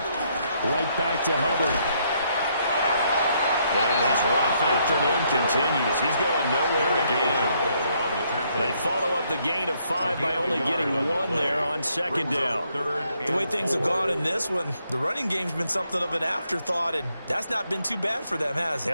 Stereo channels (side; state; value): both; inverted; correlation -0.72